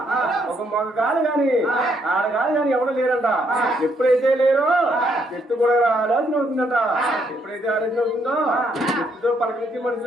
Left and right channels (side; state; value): both; normal; correlation 0.72